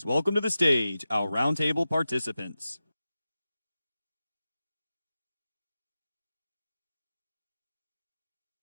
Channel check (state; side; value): inverted; both; correlation -0.94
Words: welcome to the stage our roundtable participants.